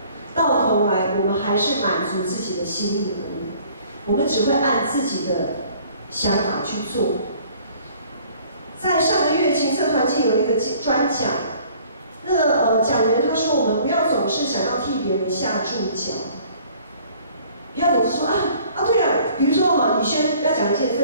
到头来，我们还是满足自己的心意而已。我们只会按自己的想法去做。在上个月青策团契有一个专讲，那个讲员他说，我们不要总是想要替别人下注脚，不要总是说对了，比如说李轩要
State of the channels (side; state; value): both; inverted; correlation -0.55